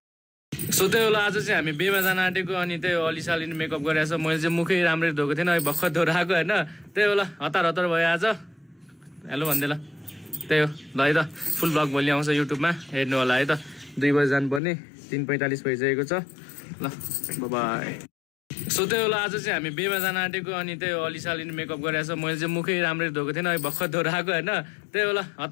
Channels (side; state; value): right; drops out; at 14.6 s